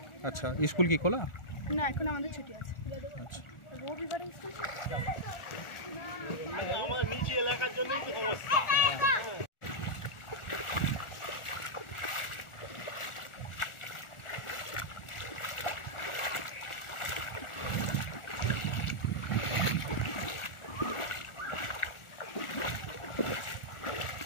আচ্ছা, স্কুল কি খোলা? না, এখন আমাদের ছুটি আছে। আচ্ছা, আমার নিচে এলাকার জন্যই তো সমস্যা।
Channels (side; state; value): right; late; 1.4 ms